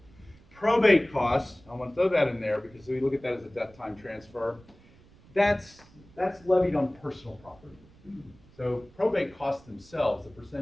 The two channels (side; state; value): right; noise; rumble, 26 dB below the sound